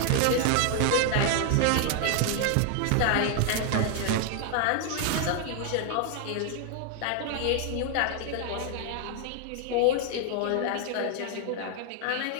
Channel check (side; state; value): both; different; correlation 0.00